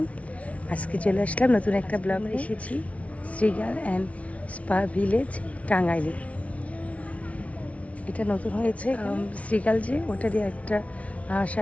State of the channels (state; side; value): late; right; 0.065 ms